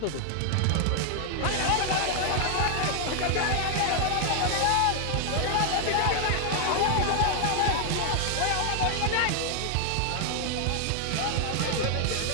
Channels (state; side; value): different; both; correlation 0.00